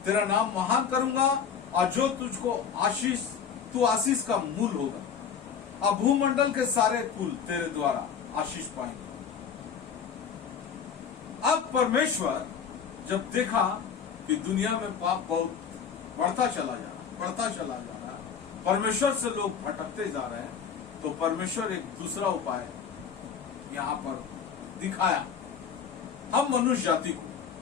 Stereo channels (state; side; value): quieter; right; 7.1 dB